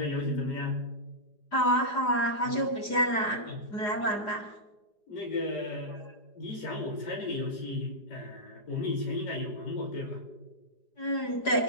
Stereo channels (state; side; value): late; right; 4.9 ms